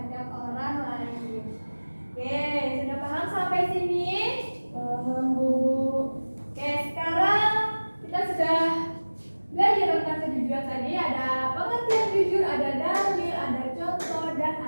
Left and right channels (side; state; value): both; inverted; correlation -1.00